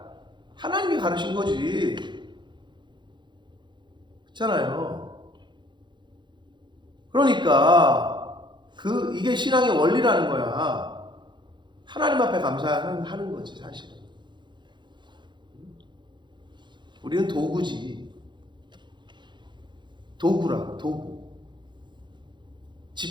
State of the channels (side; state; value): left; late; 0.22 ms